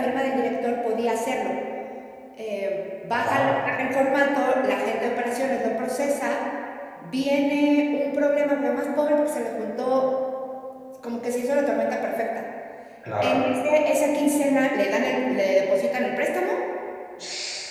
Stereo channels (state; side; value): identical; both; correlation 1.00